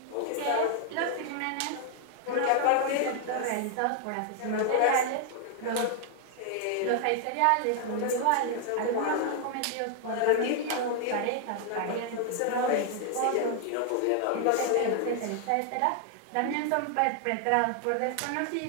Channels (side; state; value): both; different; correlation 0.00